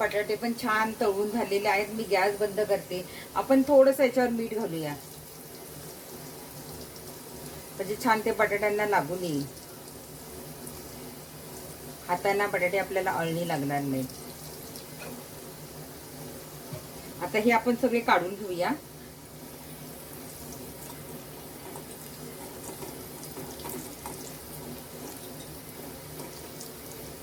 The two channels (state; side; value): identical; both; correlation 1.00